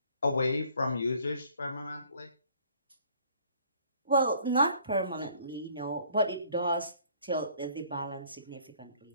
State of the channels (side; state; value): both; inverted; correlation -0.58